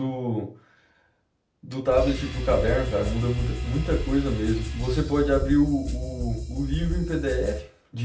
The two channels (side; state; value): both; identical; correlation 1.00